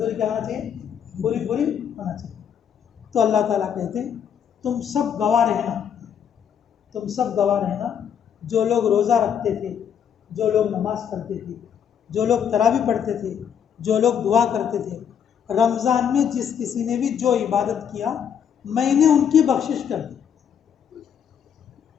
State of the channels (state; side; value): quieter; right; 8.2 dB